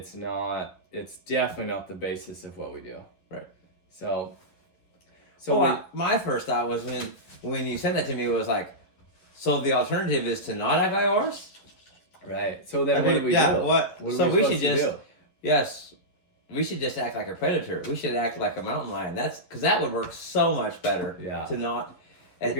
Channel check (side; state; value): right; late; 11 ms